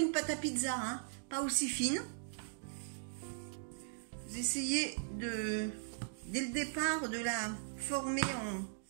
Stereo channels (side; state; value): left; silent; digital silence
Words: pâte à pizza, hein, pas aussi fine. Vous essayez dès le départ de la former en